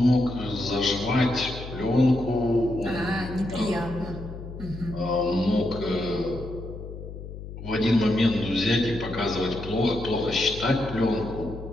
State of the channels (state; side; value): noise; left; hum, 11 dB below the sound